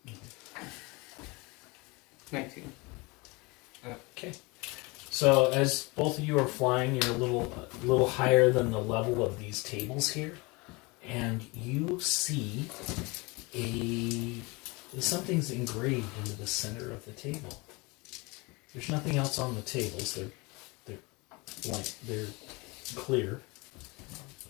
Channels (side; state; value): right; quieter; 26.1 dB